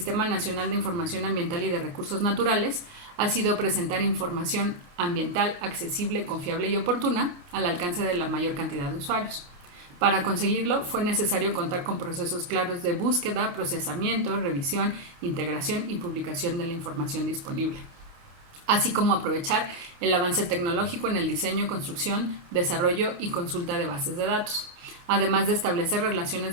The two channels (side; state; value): left; late; 28 ms